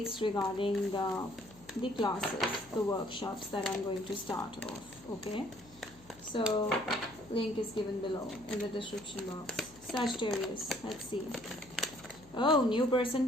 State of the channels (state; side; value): noise; left; hum, 24 dB below the sound